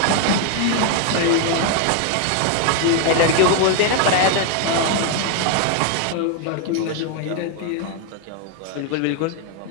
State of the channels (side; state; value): both; different; correlation 0.00